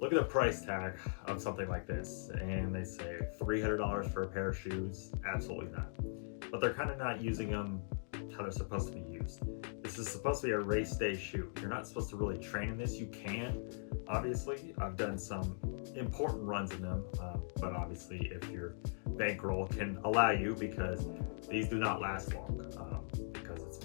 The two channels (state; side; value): silent; right; digital silence